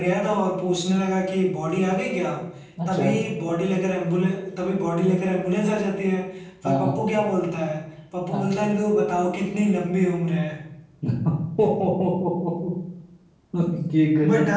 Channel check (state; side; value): identical; both; correlation 1.00